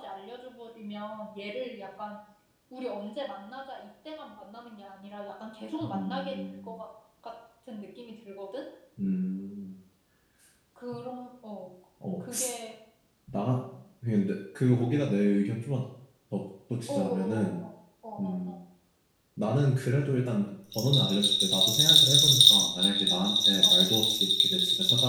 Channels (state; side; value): identical; both; correlation 1.00